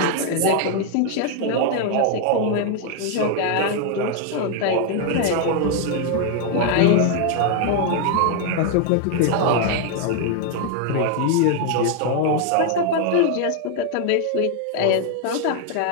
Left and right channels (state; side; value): different; both; correlation 0.01